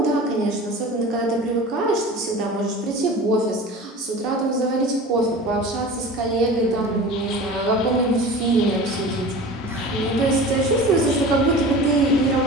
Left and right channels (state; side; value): normal; both; correlation 0.36